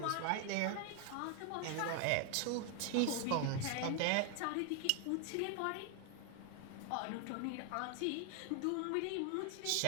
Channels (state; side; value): different; both; correlation 0.01